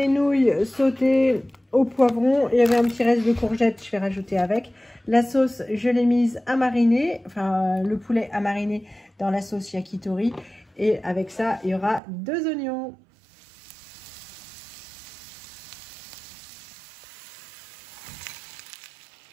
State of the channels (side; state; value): left; drops out; at 12.0 s